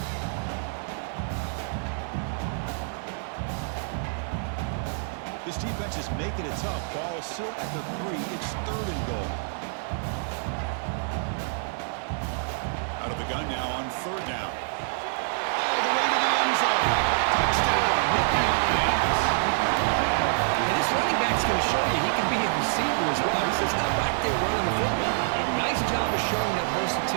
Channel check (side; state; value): left; silent; digital silence